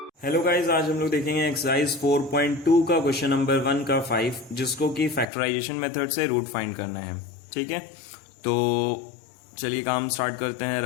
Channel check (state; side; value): drops out; right; at 5.2 s